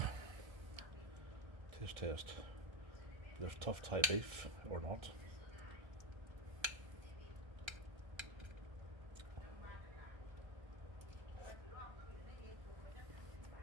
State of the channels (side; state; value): left; late; 1.3 ms